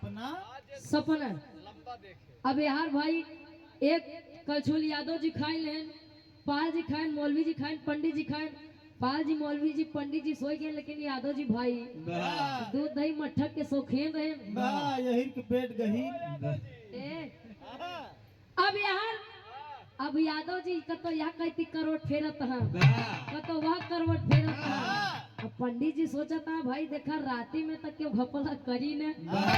सपना अब यार भाई एक कलछुल यादव जी खाए लेन, पाल जी खाए, मौलवी जी खाए, पंडित जी खाए। पाल जी, मौलवी जी, पंडित जी सोए गए, लेकिन यादव जी भाई दूध दही मट्ठा के शौकीन रहे। यही के पेट गही। अब यादव जी कतो यहाँ कहती करवट फेरत है, कतो वह करवट फेरत है। अब पंडित जी सोचा था भाई देखा राती में तक क्यों घपला करी ने,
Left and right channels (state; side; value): identical; both; correlation 1.00